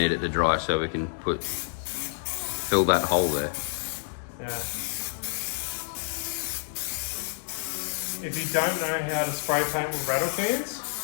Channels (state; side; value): silent; right; digital silence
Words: it to dry so we can fill that hole there. Yeah. If you don't know how to spray paint with rattle cans,